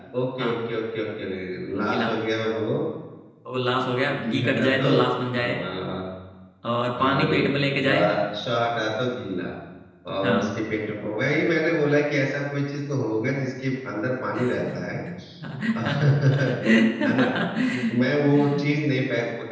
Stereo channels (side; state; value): both; identical; correlation 1.00